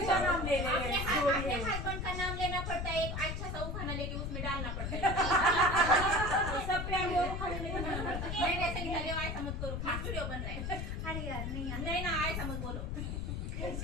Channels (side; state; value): left; noise; rumble, 3 dB below the sound